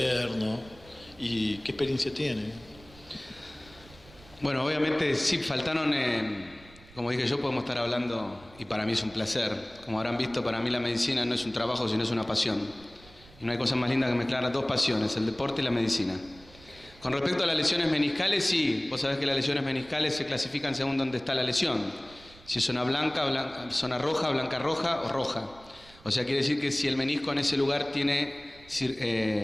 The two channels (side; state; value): right; noise; rumble, 23 dB below the sound